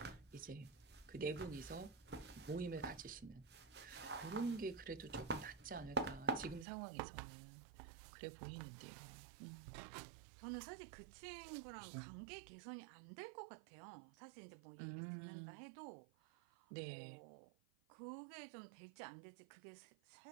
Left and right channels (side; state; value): left; drops out; at 6.7 s